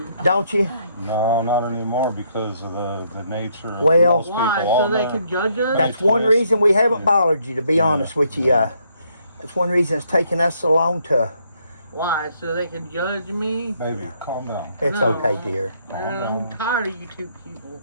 don't you? No, not anymore because of the nature of Well- most people Why? So on they there. can judge us? That's one reason we haven't bothered you, to be honest with you. That's one reason it's taken us so long to. Why? So they can judge me? Baby, calm down. It's No. okay, dear. Man, I'm tired of you two people.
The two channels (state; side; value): inverted; both; correlation -0.71